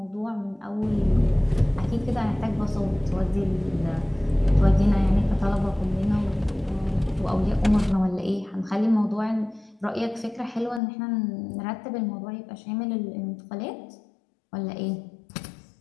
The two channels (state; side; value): drops out; right; at 10.8 s